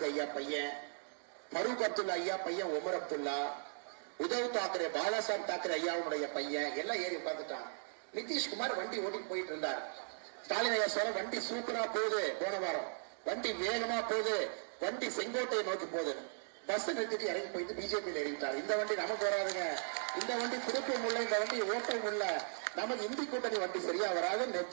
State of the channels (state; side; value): silent; left; digital silence